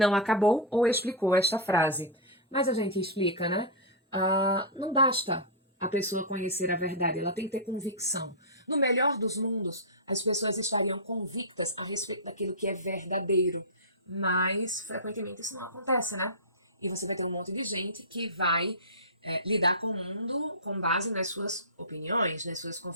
acabou ou explicou esta frase, mas a gente explica, né? Não basta a pessoa conhecer a verdade, ela tem que ter convicção. No melhor dos mundos, as pessoas estariam convictas a respeito daquilo que é verdadeiro, mas frequentemente isso não acontece, né? E você vai ter um monte de gente que vai lidar com o mundo com base nas suas opiniões, nas suas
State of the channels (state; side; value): normal; both; correlation -0.13